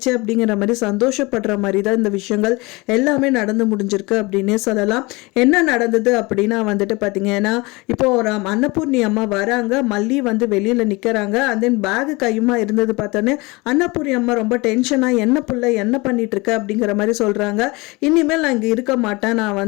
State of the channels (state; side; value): quieter; right; 24.6 dB